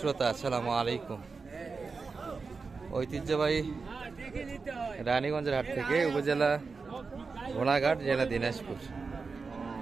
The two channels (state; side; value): quieter; left; 4.6 dB